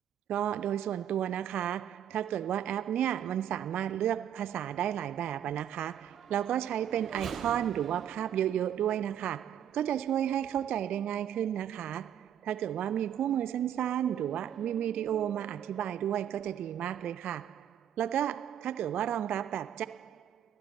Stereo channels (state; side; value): quieter; left; 10.1 dB